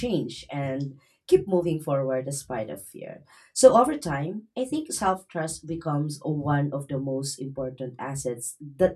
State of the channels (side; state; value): both; identical; correlation 1.00